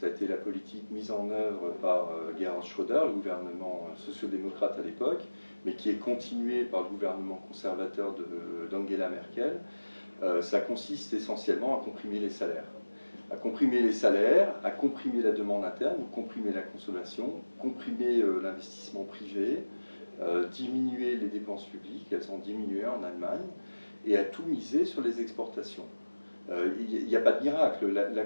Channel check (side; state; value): both; inverted; correlation -1.00